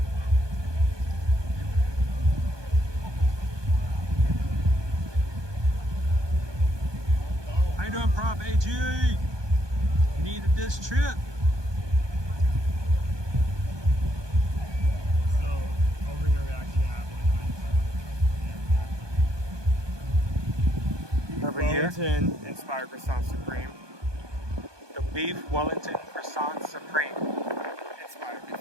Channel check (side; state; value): left; late; 1.2 ms